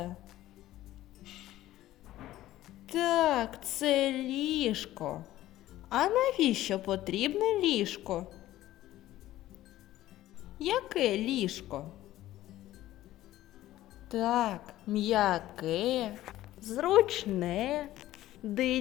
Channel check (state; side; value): quieter; right; 14.8 dB